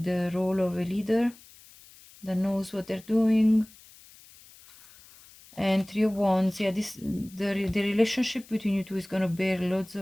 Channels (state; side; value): noise; left; hiss, 23 dB below the sound